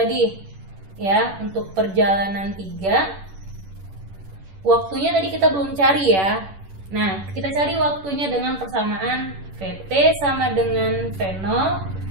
Ya, untuk perjalanan 3 waktunya tadi kita belum cari ya. Nah, kita cari waktunya dengan persamaan VT sama dengan V0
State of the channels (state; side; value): late; left; 10 ms